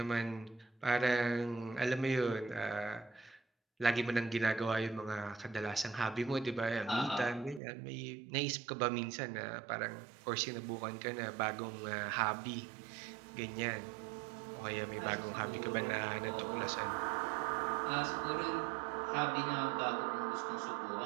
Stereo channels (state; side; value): drops out; left; at 7.6 s